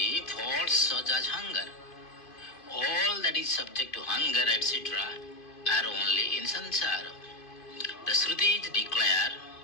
faults such as hunger. All that is subject to hunger etc. are only in samsara. The Shrutis declare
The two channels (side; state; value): right; late; 2.5 ms